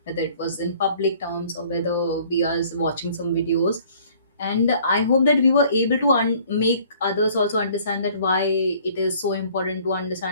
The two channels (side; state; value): both; inverted; correlation -0.56